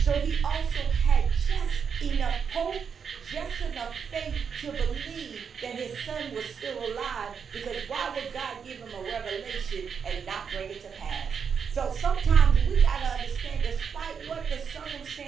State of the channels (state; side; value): quieter; left; 6.6 dB